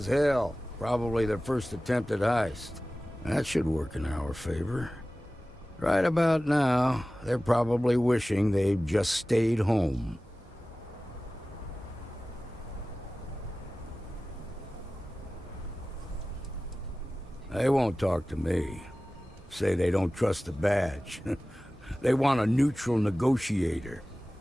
hell. Probably their first attempt at heist. That should work in our favor. Right about now, they're probably wishing they'd just stayed home. They won't talk to me. Say they don't trust the badge. They want a neutral negotiator.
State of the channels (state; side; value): normal; both; correlation 0.97